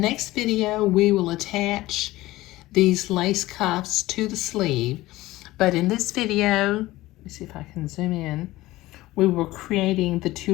video, we will attach these lace cuffs to the sleeve. But in this video, let me see if I can zoom in, we were creating the two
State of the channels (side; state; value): right; quieter; 17.8 dB